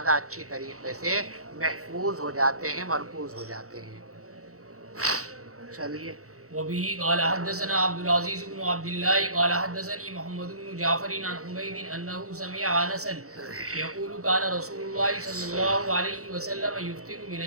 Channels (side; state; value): left; late; 0.65 ms